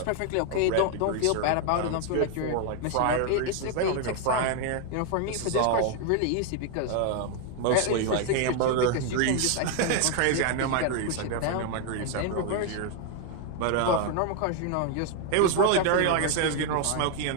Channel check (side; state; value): both; different; correlation 0.01